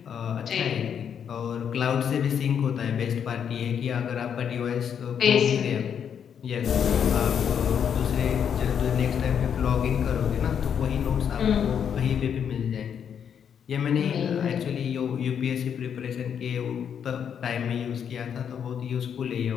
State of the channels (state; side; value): quieter; right; 8.0 dB